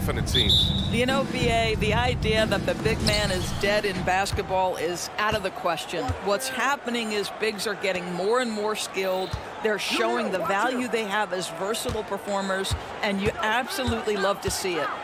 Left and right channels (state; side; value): identical; both; correlation 1.00